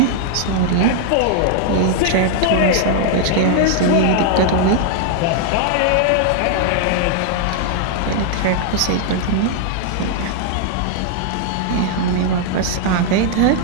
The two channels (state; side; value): different; both; correlation 0.00